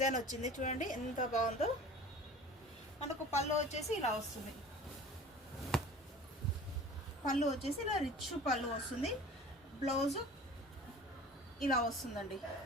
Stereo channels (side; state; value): both; normal; correlation 0.41